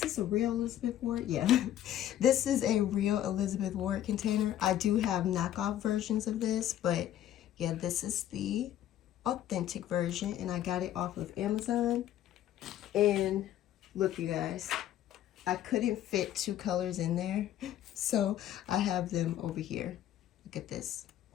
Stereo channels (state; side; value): quieter; right; 11.9 dB